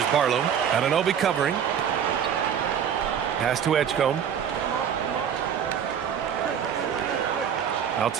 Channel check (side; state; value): left; quieter; 8.4 dB